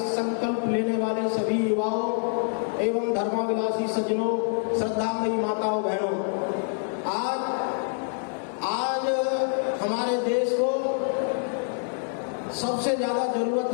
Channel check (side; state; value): right; silent; 61 dB below the other